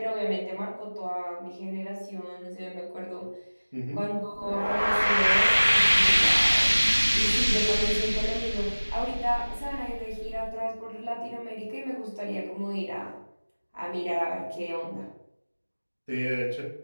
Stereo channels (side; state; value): both; inverted; correlation -1.00